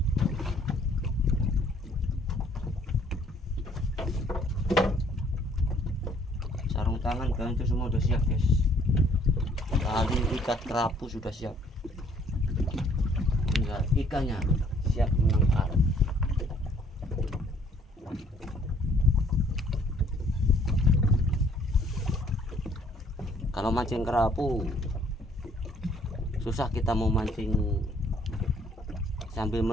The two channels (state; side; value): normal; both; correlation 0.61